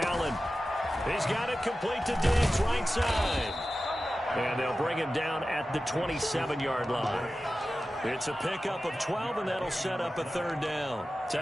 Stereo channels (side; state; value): both; normal; correlation 0.94